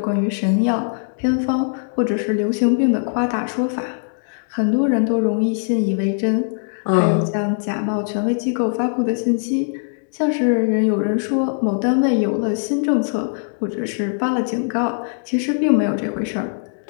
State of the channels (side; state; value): right; silent; digital silence